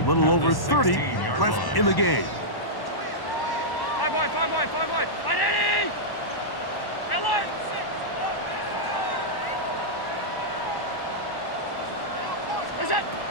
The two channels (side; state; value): right; late; 1.1 ms